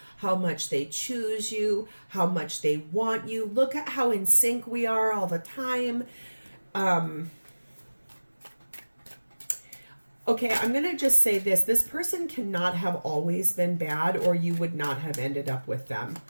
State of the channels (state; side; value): inverted; both; correlation -1.00